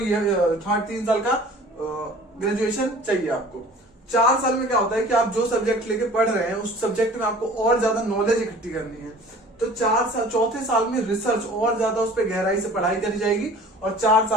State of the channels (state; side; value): normal; both; correlation 0.46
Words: 3 साल का ग्रेजुएशन चाहिए आपको। 4 साल में क्या होता है कि आप जो सब्जेक्ट लेके पढ़ रहे हैं उस सब्जेक्ट में आपको और ज्यादा नॉलेज इकट्ठी करनी है। तो 4 साल में रिसर्च और ज्यादा उस पर गहराई से पढ़ाई करी जाएगी और 4